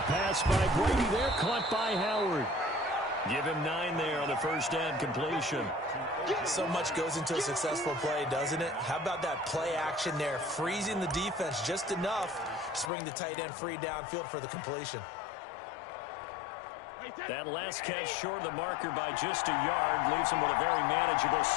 by Brady there, caught by Howard. Give him 9 there on the 1st down completion. So much goes into a successful play, doesn't it? How about that play action there, freezing the defense just enough to bring the tight end free downfield for the completion. That last catch short of the marker by just a yard leaves him with a very manageable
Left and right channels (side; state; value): right; drops out; at 12.9 s